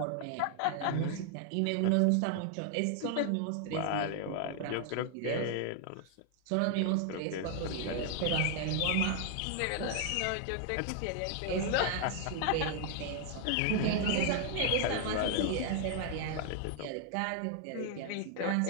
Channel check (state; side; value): different; both; correlation 0.00